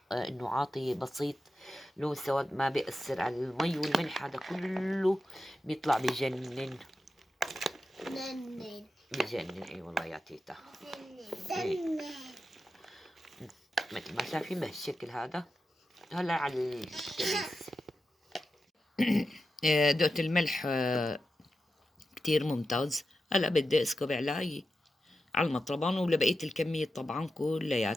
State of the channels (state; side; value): normal; both; correlation 0.90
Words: انه عاطي بسيط لون سواد ما بيأثر على المي والملح، هذا كله بيطلع بجنن بجنن. اي والله يا تيتا مثل ما شايفين بهالشكل هذا. هلا على الكبيس دقت الملح كتير ممتاز. هلا بدي اسكب على المطربان ولبقية الكمية طبعا